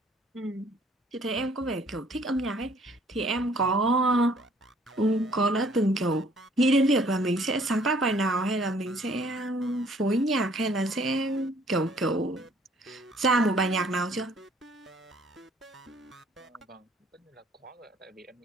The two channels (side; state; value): both; normal; correlation 0.60